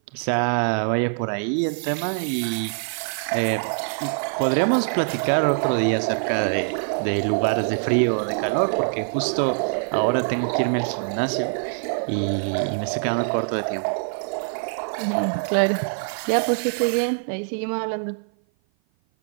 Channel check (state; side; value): silent; left; 55 dB below the other